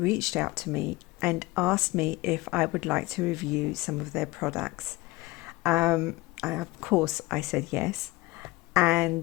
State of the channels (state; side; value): quieter; right; 21.3 dB